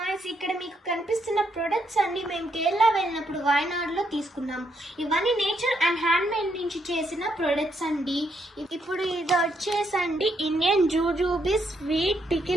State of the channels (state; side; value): normal; both; correlation 0.76